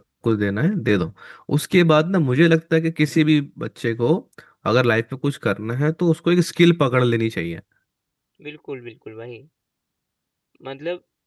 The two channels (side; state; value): both; identical; correlation 1.00